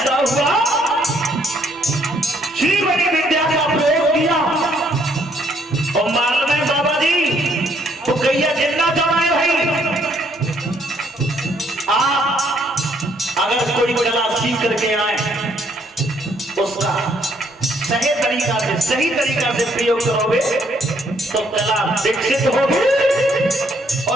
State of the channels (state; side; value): normal; both; correlation 0.68